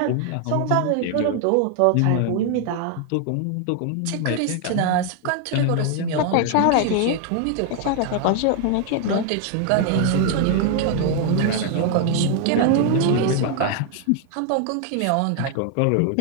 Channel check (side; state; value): both; different; correlation 0.00